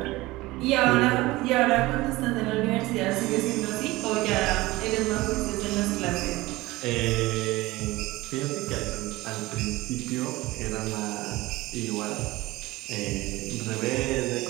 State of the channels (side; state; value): left; quieter; 19.7 dB